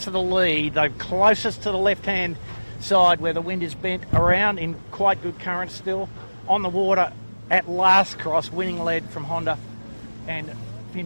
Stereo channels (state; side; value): inverted; both; correlation -1.00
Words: to the lead. They're closest to the left-hand side where the wind is bent around in quite good current still. On the water at last cross, winning lead from Honda, and